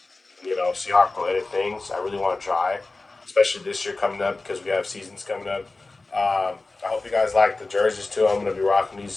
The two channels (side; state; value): right; quieter; 3.3 dB